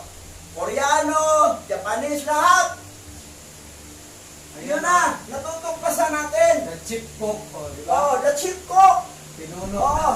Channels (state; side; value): identical; both; correlation 1.00